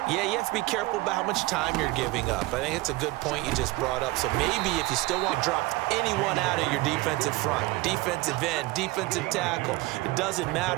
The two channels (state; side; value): quieter; left; 20.7 dB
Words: Yeah, you have to be careful about how much time you're giving up. I think it's a good point you just brought up. So maybe if you still want to drop anyone out of your defensive front, defensive end, defensive tackle, it doesn't